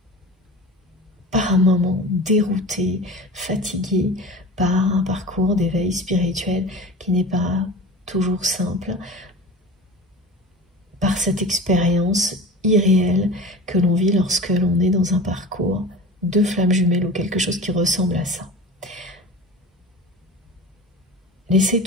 par un moment déroutées, fatiguées par un parcours d'éveil spirituel qui n'est pas toujours simple, par cette expérience irréelle que l'on vit lorsque l'on est dans un parcours de flammes jumelles ou quelque chose qui ressemble à ça. Laissez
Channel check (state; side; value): normal; both; correlation 0.35